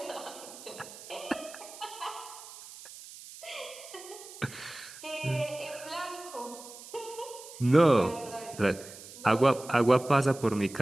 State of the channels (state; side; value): noise; right; hiss, 16 dB below the sound